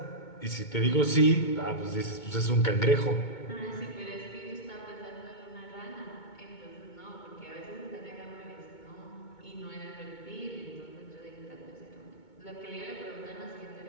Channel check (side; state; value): right; late; 2.2 ms